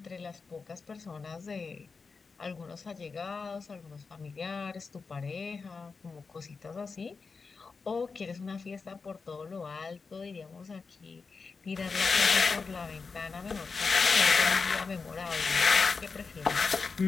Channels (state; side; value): quieter; right; 4.7 dB